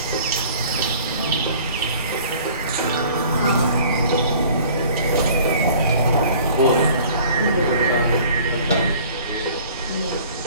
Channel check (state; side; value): inverted; both; correlation -0.51